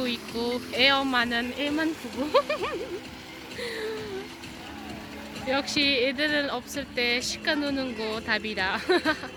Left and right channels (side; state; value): both; identical; correlation 1.00